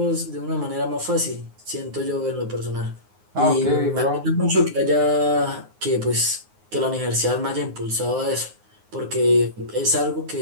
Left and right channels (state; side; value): late; left; 9.6 ms